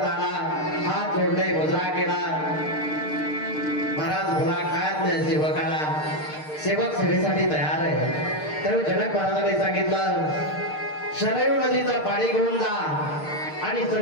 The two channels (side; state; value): right; late; 6.6 ms